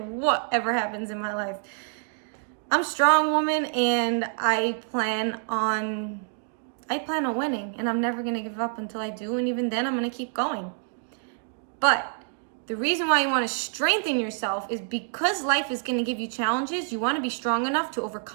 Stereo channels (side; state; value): left; silent; 60 dB below the other